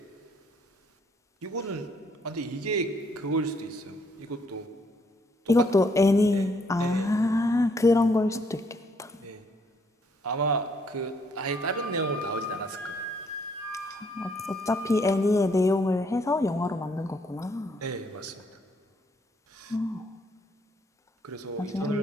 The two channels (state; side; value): normal; both; correlation 0.69